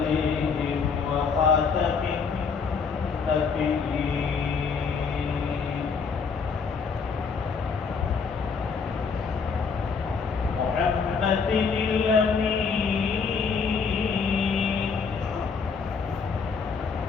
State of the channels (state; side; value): quieter; right; 5.4 dB